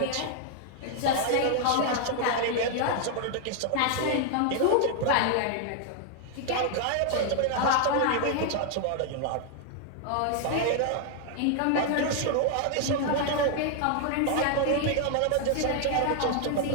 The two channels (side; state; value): both; different; correlation 0.00